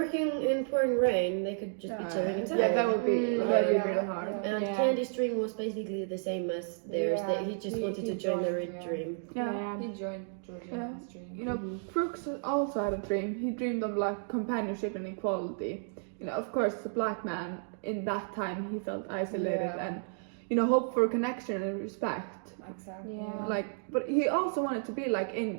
in pouring rain. They could just be chilling inside. Yeah, that would be really hard. And Candy's dream was basically the same as theirs. He just wanted to join their dream. Yeah. He joined George's dream. Brooks also had a dream. He dreamed of like companionship and equality. Of course, the black man in that time, he felt isolated and hope for connection and respect. Exactly. Yeah. But he also wanted to be like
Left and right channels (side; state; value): left; silent; digital silence